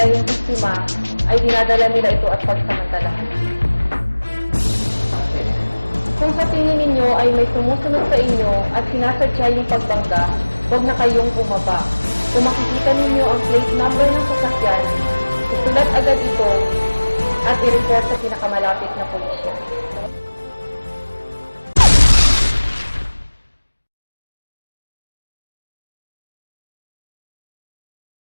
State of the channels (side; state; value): both; inverted; correlation -1.00